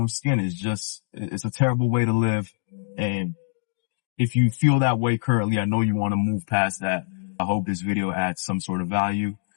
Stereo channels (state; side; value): silent; right; digital silence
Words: skin. It's a terrible way to live. And if you feel that way currently, I know you want to move past that. I hope this video adds some sort of value